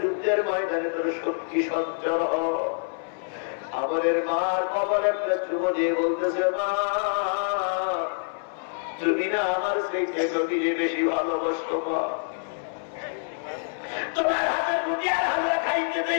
যুদ্ধের ময়দানে তোর শক্তি সঞ্চয় হয়। আমাদের মার কপালে একটা চুমো দিয়ে বলতেছে, মা তুমি না আমার সেই নবীকে বেশি ভালোবাসতো, মা তোমার হাতের রুটি আর হালুয়া খাইতে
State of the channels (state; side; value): silent; right; 61 dB below the other